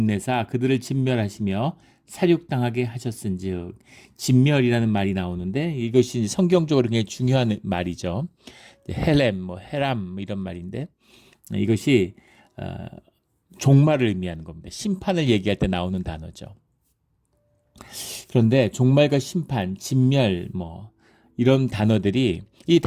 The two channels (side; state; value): both; identical; correlation 1.00